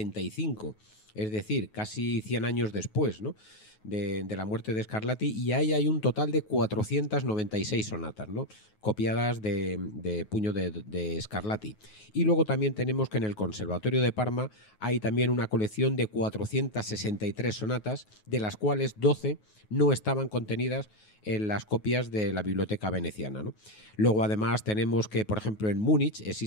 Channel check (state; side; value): late; right; 9.4 ms